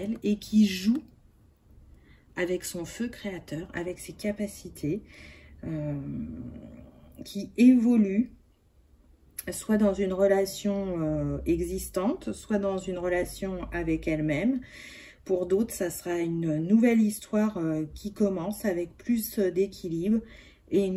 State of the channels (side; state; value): both; identical; correlation 1.00